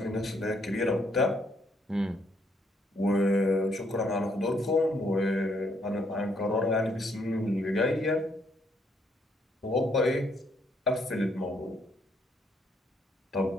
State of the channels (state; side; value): normal; both; correlation 0.71